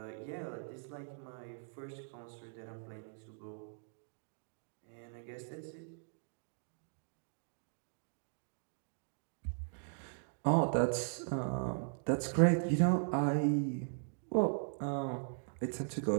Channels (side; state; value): left; silent; digital silence